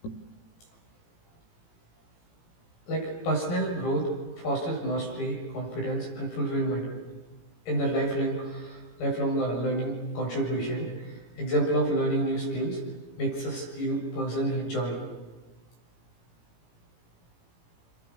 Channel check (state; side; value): late; right; 18 ms